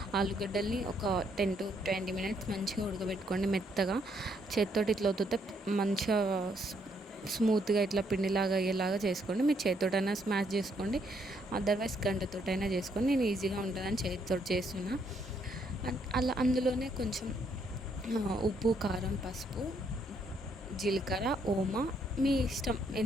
ఆలుగడ్డల్ని ఒక 10 to 20 minutes మంచిగా ఉడకబెట్టుకోండి మెత్తగా. చేతితోటి ఇట్లా వద్దుతే మంచిగా స్మూత్గా ఇట్లా పిండిలాగా అయ్యేలాగా చేసుకోండి. మీరు చేతితోటైనా స్మాష్ చేసుకోండి, అదర్వైజ్ గంటతోటైనా చేసుకోండి. నేను ఈజీగా ఉంటుందని చేతితో చేస్తున్నా. అలా అందులోనే కొంచెం ఉప్పు, కారం, పసుపు, జీలకర్ర, ఓమా మీ ఇష్టం,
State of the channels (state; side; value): normal; both; correlation 0.72